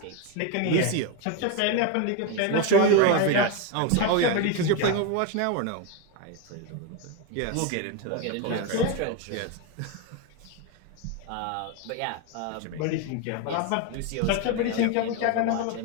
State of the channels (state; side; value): different; both; correlation 0.02